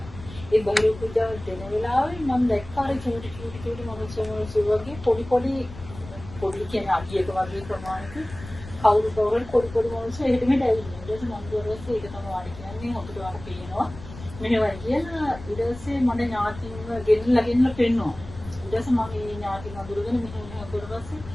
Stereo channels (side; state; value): left; noise; rumble, 15 dB below the sound